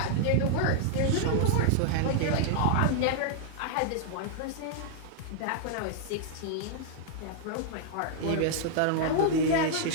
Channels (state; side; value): different; both; correlation -0.01